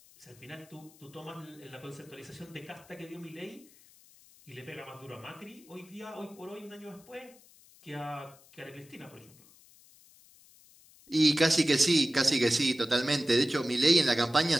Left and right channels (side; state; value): left; noise; hiss, 26 dB below the sound